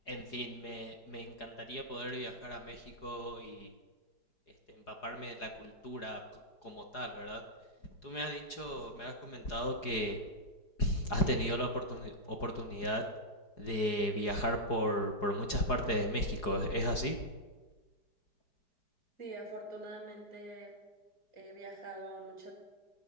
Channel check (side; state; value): right; late; 4.8 ms